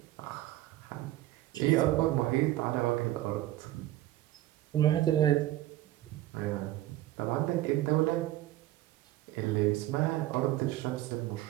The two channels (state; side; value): quieter; left; 15.0 dB